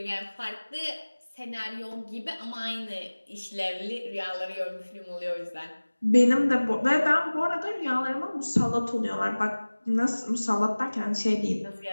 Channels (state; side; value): inverted; both; correlation -1.00